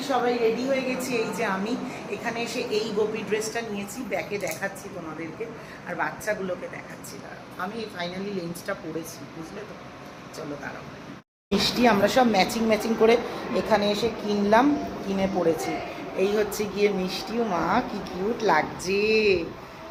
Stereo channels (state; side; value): identical; both; correlation 1.00